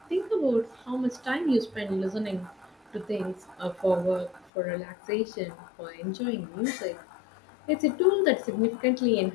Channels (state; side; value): drops out; right; at 4.5 s